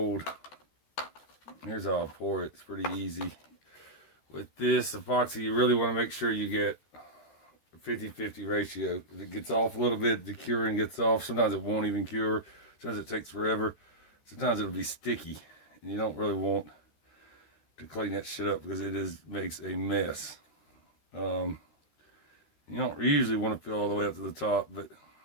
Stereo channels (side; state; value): right; late; 13 ms